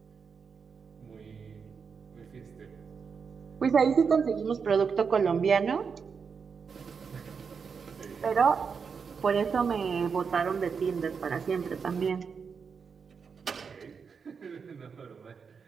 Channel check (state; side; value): quieter; left; 5.9 dB